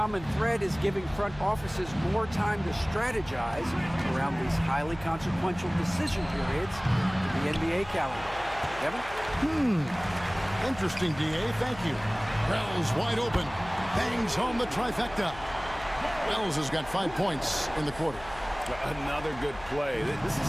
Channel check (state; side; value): noise; left; hum, 17 dB below the sound